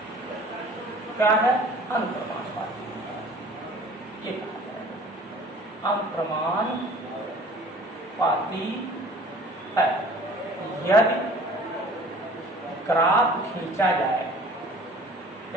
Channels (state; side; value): normal; both; correlation 0.48